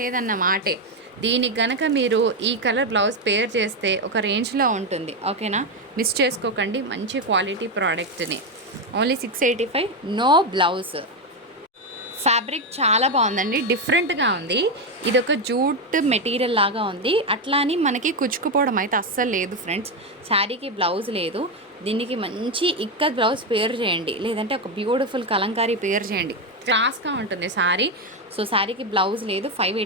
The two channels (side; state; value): both; normal; correlation 0.09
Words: మాటే. దీనికి గనక మీరు ఈ కలర్ బ్లౌజ్ పేర్ చేస్తే ఒక రేంజ్లో ఉంటుంది, ఓకేనా? మిస్ చేసుకోకండి, మంచి క్వాలిటీ ప్రోడక్ట్ని. Only 685, no blouse. ఫ్యాబ్రిక్ చాలా బాగుందండి, డిఫరెంట్గా ఉంది. ఇది ఒక జూట్ మెటీరియల్ లాగా ఉంది, అట్లా అని మనకి కుచ్చుకుపోవడం అయితే అస్సలు లేదు ఫ్రెండ్స్. శారీకి బ్లౌజ్ లేదు, దీనికి మంచి ఇక్కత్ బ్లౌజ్ పేర్ చేయండి, లేదంటే ఒక బ్యూటిఫుల్ కలంకారీ పేర్ చేయండి, క్లాస్గా ఉంటుంది శారీ. సో శారీకి బ్లౌజ్ లేదు,